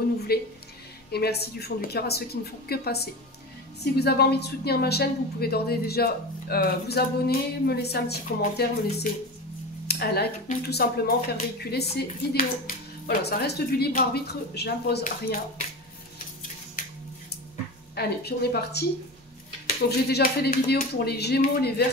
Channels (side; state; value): both; normal; correlation 0.27